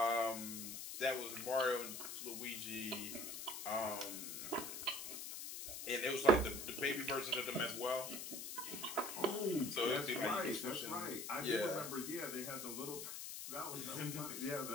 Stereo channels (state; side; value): noise; left; hiss, 6 dB below the sound